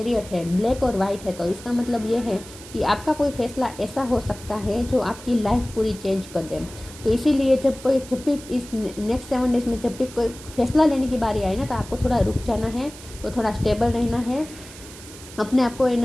है, ब्लैक और वाइट है, तो इसका मतलब ये है कि आपका कोई फैसला ऐसा हो सकता है जो आपकी लाइफ पूरी चेंज कर दे। तो इसीलिए जब भी इस नेक्स्ट 7 डेज में जब भी कोई फैसला लेने की बारी आए ना, तो आपको थोड़ा रुक जाना है, तो थोड़ा स्टेबल रहना है, अपने आप को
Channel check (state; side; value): noise; right; hiss, 17 dB below the sound